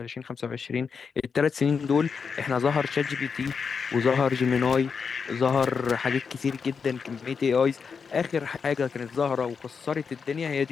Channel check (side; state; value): right; quieter; 5.8 dB